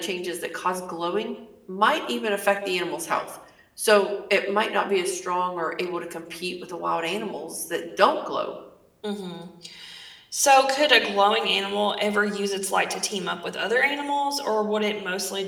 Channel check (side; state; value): both; identical; correlation 1.00